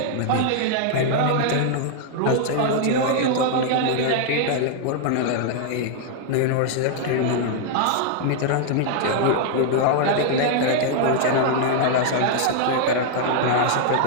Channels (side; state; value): both; different; correlation 0.00